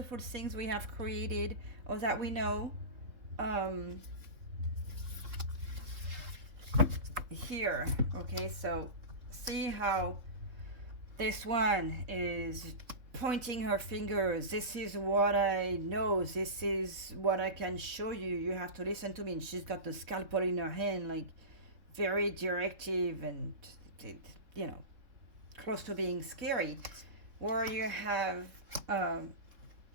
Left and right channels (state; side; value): late; left; 3.7 ms